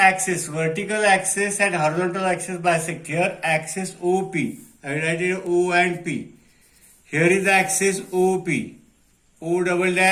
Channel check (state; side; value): identical; both; correlation 1.00